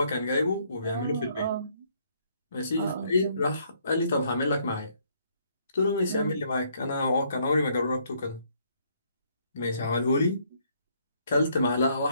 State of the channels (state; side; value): inverted; both; correlation -0.68